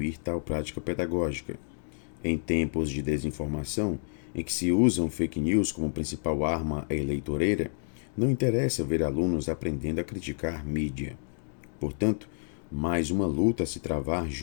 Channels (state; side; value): silent; right; digital silence